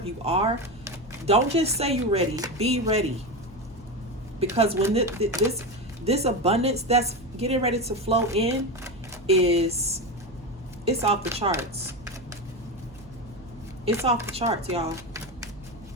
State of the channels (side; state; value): right; noise; hum, 22 dB below the sound